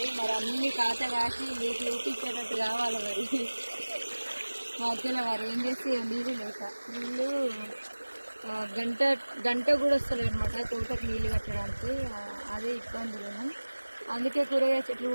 మరి అన్ని కాత కాసి మీకు చూపించేటట్టు కావాలి. మరి మధ్యలో వారు ఏం చేస్తే నీళ్ళు లేక నీళ్ళు గంట కూడా వస్తలేదు అనమాట తోటకు నీళ్ళు కట్టడానికి. అదే ఇబ్బందులు. అందుకే కూరగాయ చెట్లు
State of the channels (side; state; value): both; inverted; correlation -1.00